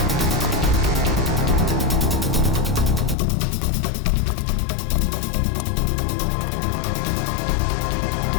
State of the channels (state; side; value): drops out; right; at 3.2 s